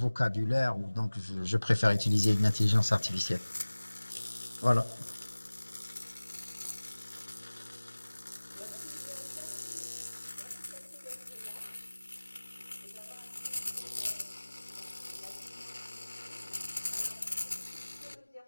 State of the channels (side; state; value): both; inverted; correlation -1.00